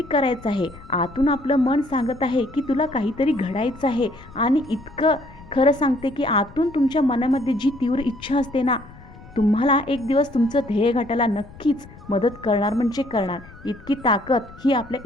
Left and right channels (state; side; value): noise; left; rumble, 20 dB below the sound